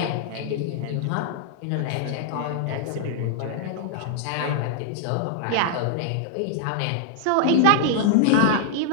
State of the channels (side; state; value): both; different; correlation -0.01